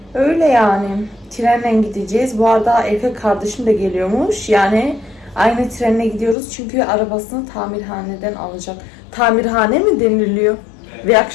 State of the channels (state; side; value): drops out; right; at 6.4 s